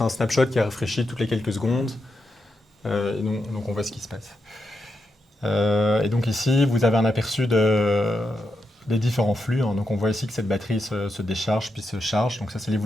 un snapshot qui a rafraîchi toutes les quelques secondes. Et donc, on voit ce qui se passe. Et donc, ici, vous avez un aperçu des différents flux. Hein. Donc, on voit ici que cette batterie se décharge puis se charge. Donc, ça, c'est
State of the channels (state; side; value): normal; both; correlation 0.85